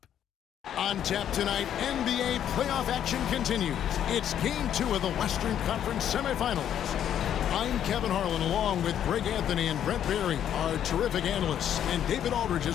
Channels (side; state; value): right; quieter; 10.0 dB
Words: On tap tonight, NBA playoff action continues. It's Game 2 of the Western Conference semifinals. I'm Kevin Harlan, along with Greg Anthony and Brent Berry, our terrific analysts, and David Aldridge